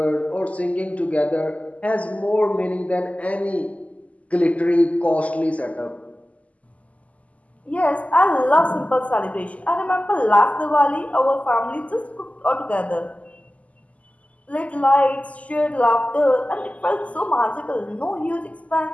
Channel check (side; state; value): right; late; 0.070 ms